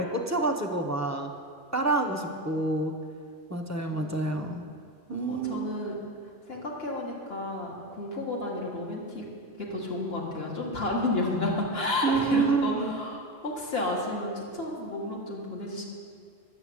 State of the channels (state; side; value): normal; both; correlation 0.17